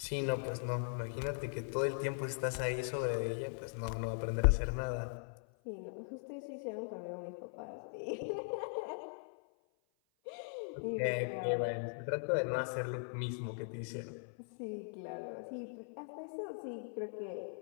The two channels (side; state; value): right; silent; 51 dB below the other